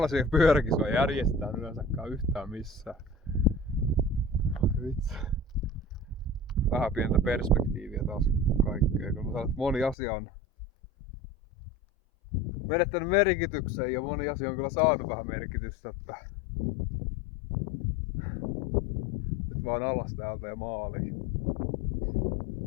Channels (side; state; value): right; drops out; at 10.0 s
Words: pyöräkisoja järjestetään yleensäkään yhtään missään. Vitsi. Vähän pientä perspektiiviä taas kaikkea, kun mä sanon, että moni asia on menettänyt merkityksen ja moni asia on kyllä saanut vähän merkitystä, että nyt vaan alas täältä ja maaliin.